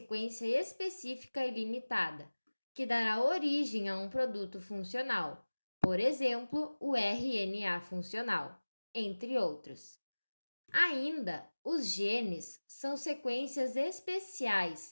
específica e limitada, que dará origem a um produto funcional, por exemplo, o RNA funcional, entre outros. Ainda, os genes são sequências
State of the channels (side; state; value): both; inverted; correlation -1.00